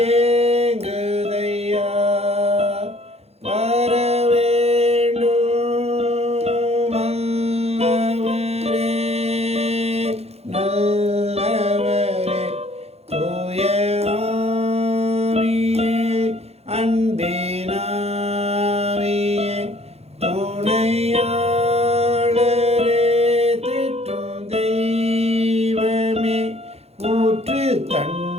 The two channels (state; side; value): late; left; 0.30 ms